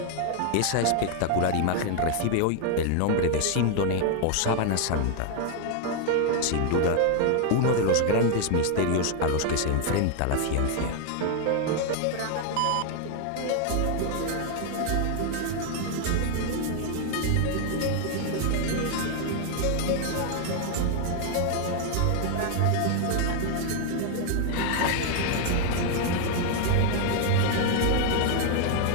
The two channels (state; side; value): different; both; correlation 0.00